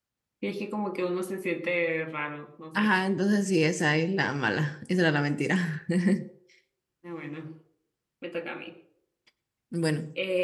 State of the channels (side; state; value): both; identical; correlation 1.00